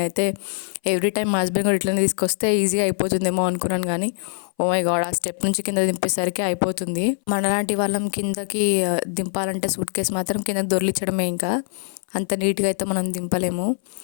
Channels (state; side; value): silent; right; 60 dB below the other